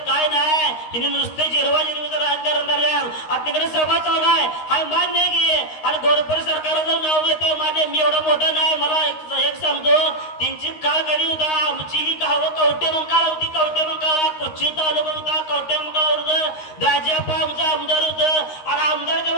काय नाही. हिने नुसते जिरवा जिरवीचं राजकारण करण्यात. आता तिकडे सभा चालू आहे, हा मान्य की. आणि गोरपर सरकारचं नाव घेतं मान्य, मी एवढं मोठं नाही. मला एक सांगतो, त्यांची काळ कधी होता, आमची ही गावं कवटे मंकाळा होती, कवटे मंकाळा कोची तालुका होता, कवटे मंकाळा होतं, दाजीप्पा आमचा आमदार होतं. आणि आमदारच्या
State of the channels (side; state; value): right; late; 13 ms